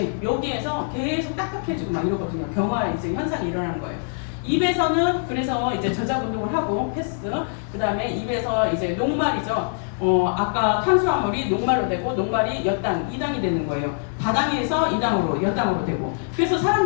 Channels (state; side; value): silent; right; 57 dB below the other